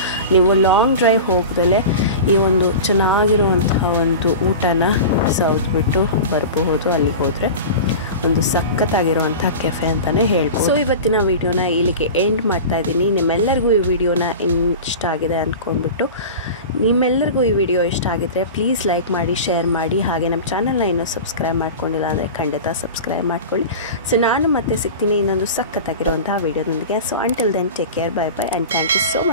ನೀವು ಲಾಂಗ್ ಡ್ರೈವ್ ಹೋಗ್ದಲೇ ಈ ಒಂದು ಚೆನ್ನಾಗಿರುವಂತಹ ಒಂದು ಊಟನ ಸೌದ್ಬಿಟ್ಟು ಬರಬಹುದು. ಅಲ್ಲಿಗೆ ಹೋದರೆ ಒಂದು ಸಖತ್ತಾಗಿರುವಂಥ ಕೆಫೆ ಅಂತಲೇ ಹೇಳ್ಬೋದು. ಸೊ ಇವತ್ತಿನ ವಿಡಿಯೋನ ಇಲ್ಲಿಗೆ ಎಂಡ್ ಮಾಡ್ತಾ ಇದ್ದೀನಿ. ನಿಮ್ಮೆಲ್ಲರಿಗೂ ಈ ವಿಡಿಯೋನ ಇಷ್ಟ ಆಗಿದೆ ಅಂದ್ಕೊಂಡ್ಬಿಟ್ಟು, ನಿಮ್ಮೆಲ್ಲರಿಗೂ ಈ ವಿಡಿಯೋ ಇಷ್ಟ ಆಗಿದ್ರೆ ಪ್ಲೀಸ್ ಲೈಕ್ ಮಾಡಿ, ಶೇರ್ ಮಾಡಿ. ಹಾಗೆ ನಮ್ಮ ಚಾನಲ್ನ ಇನ್ನೂ ಸಬ್ಸ್ಕ್ರೈಬ್ ಮಾಡ್ಕೊಂಡಿಲ್ಲ ಅಂದರೆ ಖಂಡಿತ ಸಬ್ಸ್ಕ್ರೈಬ್ ಮಾಡ್ಕೊಳ್ಳಿ. ಸೊ ನಾನು ಮತ್ತೆ ಸಿಗ್ತೀನಿ ಇನ್ನೊಂದು ಸಖತ್ತಾಗಿರುವಂತಹ ವಿಡಿಯೋದೊಂದಿಗೆ. So until then take care, bye bye and thank you so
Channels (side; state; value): both; inverted; correlation -0.31